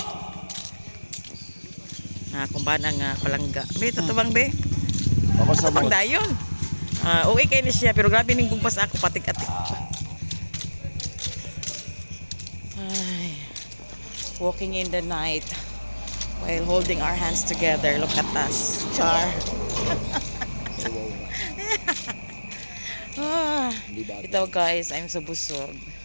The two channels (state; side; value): inverted; both; correlation -1.00